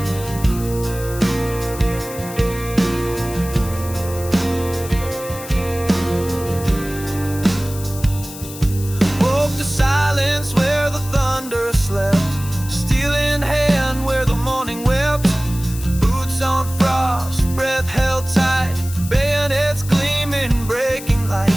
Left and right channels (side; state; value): left; noise; hiss, 13 dB below the sound